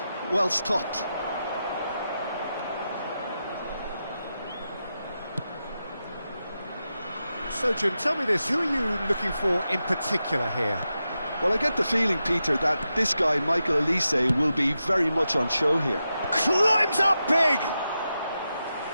well stopped. So, Jim, tell me this, who are you looking for in particular here? Well, I get the feeling, Peter, that this guy, Michael Elise, will be very much on show here. Climbs up big!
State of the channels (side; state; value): both; inverted; correlation -0.89